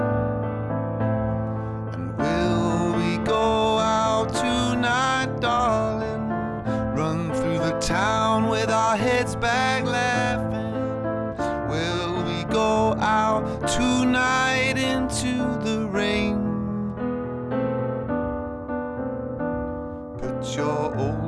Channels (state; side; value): identical; both; correlation 1.00